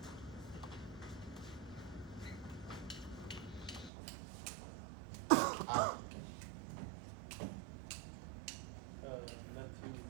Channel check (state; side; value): drops out; left; at 3.9 s